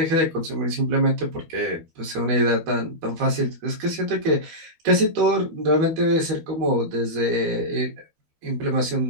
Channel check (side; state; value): left; late; 12 ms